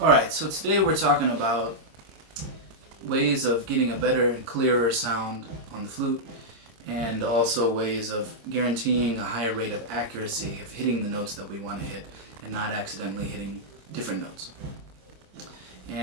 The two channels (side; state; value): left; late; 26 ms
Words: so today we're talking about ways of getting a better and clearer sound on the flute, and also ways of guaranteeing a higher rate of accuracy of hitting the notes that we want to hit and not accidentally hitting different notes.